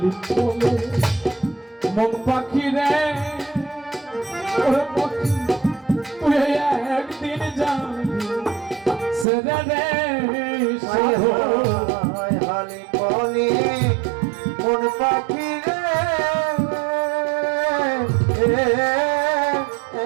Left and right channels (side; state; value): left; drops out; at 9.2 s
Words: বলে মন পাখি রে ওরে পাখি তুই একদিন যাবি সেরে রে হালি বলি মন পাখি রে